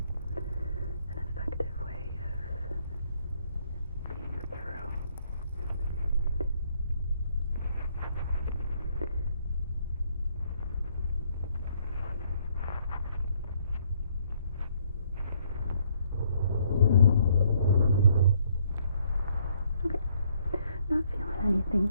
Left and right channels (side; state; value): both; inverted; correlation -0.67